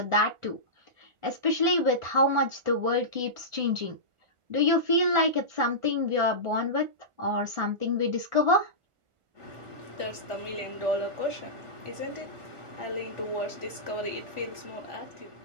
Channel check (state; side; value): late; left; 1.4 ms